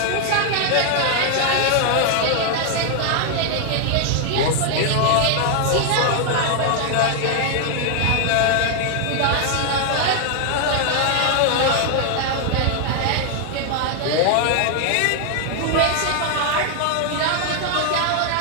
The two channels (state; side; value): different; both; correlation 0.00